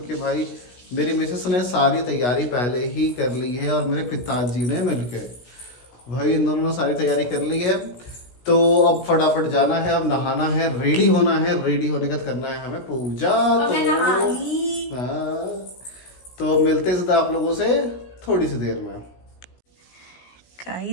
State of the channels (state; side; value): late; right; 17 ms